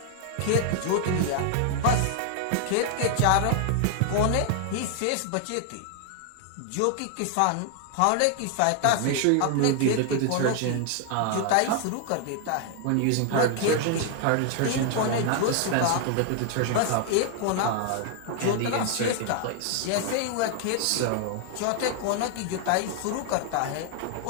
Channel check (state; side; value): different; both; correlation 0.00